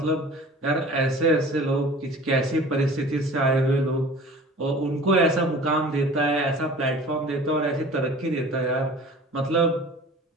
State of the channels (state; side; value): normal; both; correlation 0.44